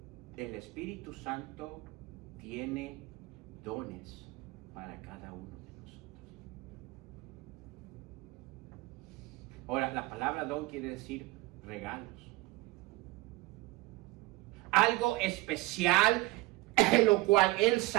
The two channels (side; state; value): left; quieter; 20.8 dB